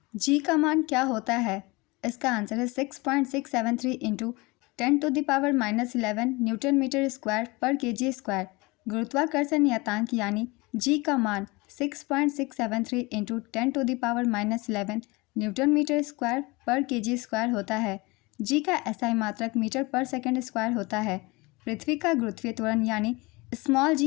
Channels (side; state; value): right; quieter; 24.4 dB